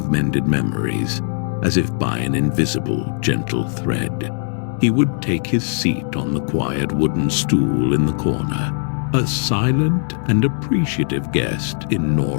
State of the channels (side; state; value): right; silent; digital silence